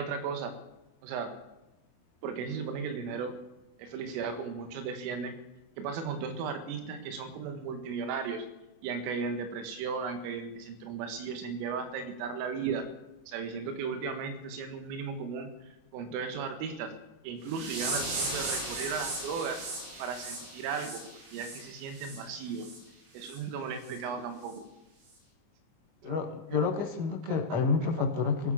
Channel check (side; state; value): left; late; 24 ms